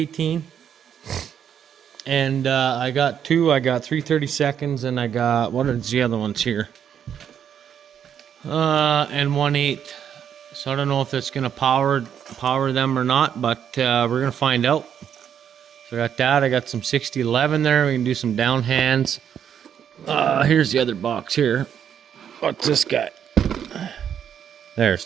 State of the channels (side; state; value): left; quieter; 8.7 dB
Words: And I got two. I got 332nds, and I got, what are the other ones here? And 1/8. So I don't know if it's gonna power them or not, but we're gonna find out. So I got that. I got some 6011 there. We can do some down hands. Here's the other box here. What's this guy? There.